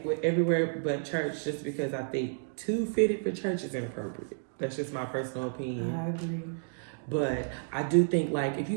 with everywhere but church just because I think too fitted for church is inappropriate. That's just my personal opinion. I agree. But I do think like if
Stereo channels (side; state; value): left; silent; digital silence